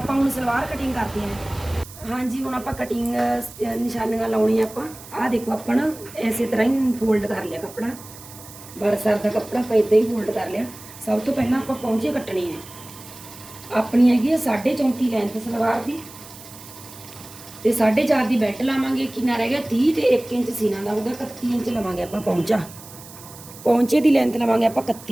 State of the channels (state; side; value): noise; right; hiss, 17 dB below the sound